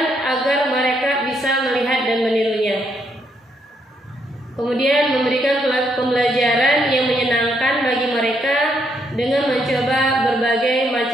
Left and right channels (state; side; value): normal; both; correlation 0.75